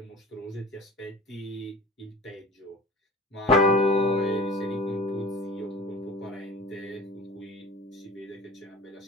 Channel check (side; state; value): both; normal; correlation 0.40